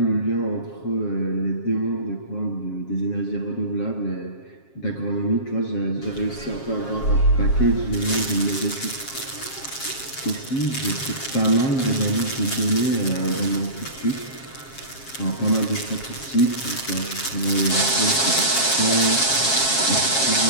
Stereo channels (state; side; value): late; right; 7.4 ms